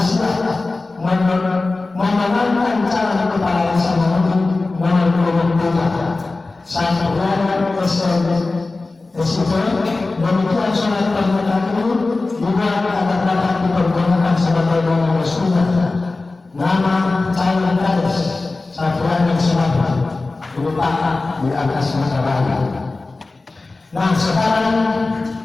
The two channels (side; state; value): right; quieter; 3.4 dB